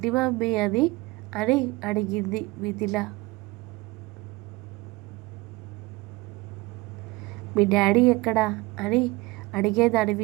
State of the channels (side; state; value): left; quieter; 22.0 dB